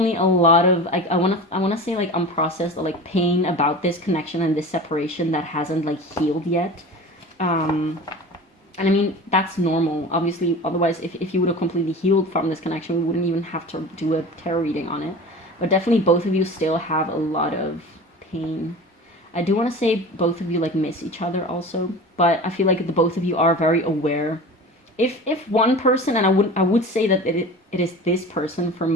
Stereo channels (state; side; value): normal; both; correlation 0.35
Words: a lot of, like, I wanna say, like, unprocessed, or, like, pain about this connection and this separation that hasn't, like, healed yet. And I mean, that's normal. Obviously, otherwise, if you would have completely healed from this connection, we wouldn't even have to do a tarot reading on it. But definitely both of you still have a lot of pain. I do want to say both of you like miss each other also, but I feel like the both of you are very aware. If one person, and I would say that it is this person for